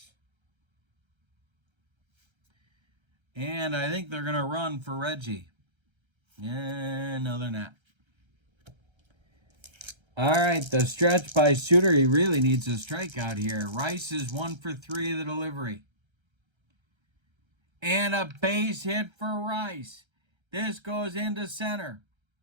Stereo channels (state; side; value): late; left; 1.3 ms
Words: And I think they're going to run for Reggie. Yeah, no, they're not. All right, the stretch by Suter. He really needs a strikeout here. Rice is 1 for 3 of the delivery. And a base hit for Rice. This goes into center.